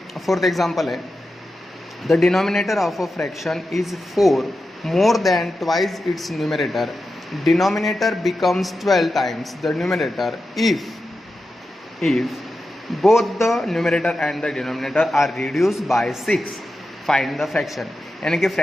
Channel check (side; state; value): both; normal; correlation 0.91